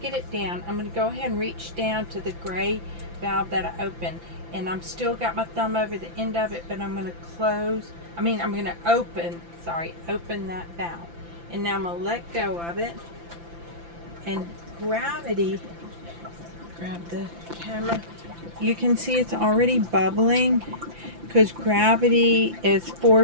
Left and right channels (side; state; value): left; late; 5.9 ms